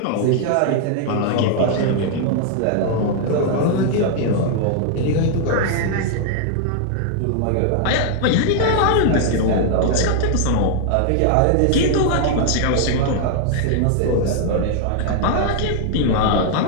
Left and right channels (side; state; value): both; different; correlation 0.00